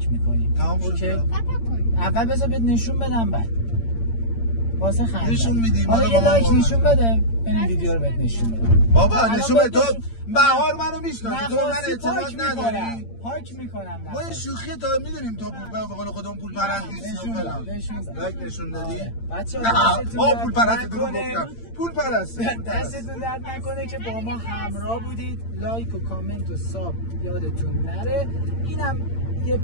میکنی. تمام شد. اول بذار بهت نشون بدم بعد. واسه خنده. نشون میدی. حالا یه لایک نشون بده. این ویدیو رو بهت نشون بدم. بابا نشون بده. تو بهار منو میشناسی. تو من اعتماد نداری. پاک میکنم. ما یه شوخی تا میدونیم تو به قول خودمون پول پرست نیستیم. لایک نشون دادی. بچه‌ها پول پرست دروغ گفتم. پول پرست. دستتون درد نکنه که با ما همراه بودید. لایک و کامنت و ساب یادتون نره. اینم یه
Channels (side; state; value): right; late; 8.8 ms